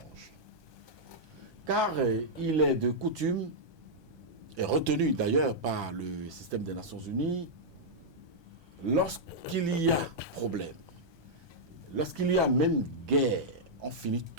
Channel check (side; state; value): left; late; 1.2 ms